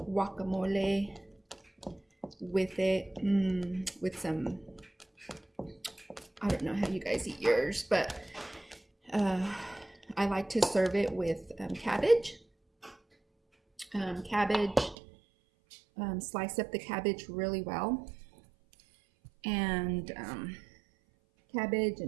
with it, with some, I don't know how you guys eat yours, but I like to serve it with cabbage. Slice up the cabbage really well, and cabbage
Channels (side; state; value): left; drops out; at 15.0 s